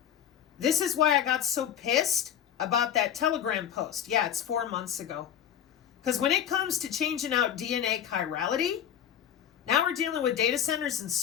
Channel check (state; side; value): quieter; right; 9.5 dB